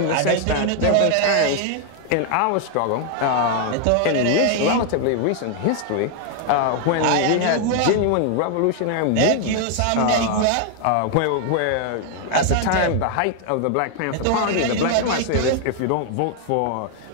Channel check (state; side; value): different; both; correlation 0.00